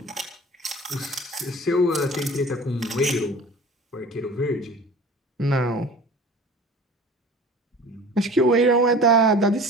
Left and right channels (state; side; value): normal; both; correlation 0.41